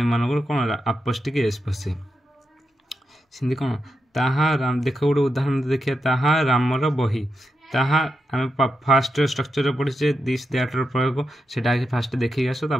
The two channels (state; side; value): normal; both; correlation 0.86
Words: कौन अपोस्टिक एस बसे। सिंधी कौन ताहा राम देख गोटे उदाहरण देखिए ताहा रामर बही ताहा आम फास्ट स्ट्रक्चर पढ़ीचे दिस दैट प्रयोग से फास्ट देखिए आस